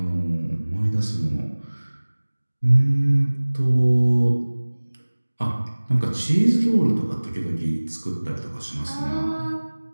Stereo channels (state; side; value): inverted; both; correlation -1.00